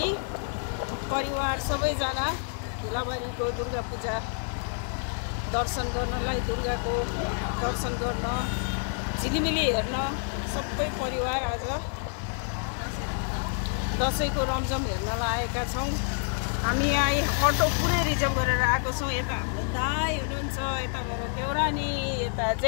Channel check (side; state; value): right; silent; 59 dB below the other